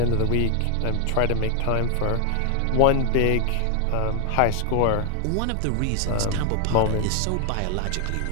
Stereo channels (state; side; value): different; both; correlation 0.00